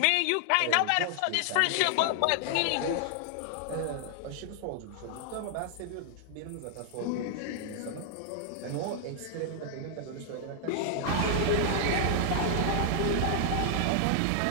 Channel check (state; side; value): different; both; correlation 0.00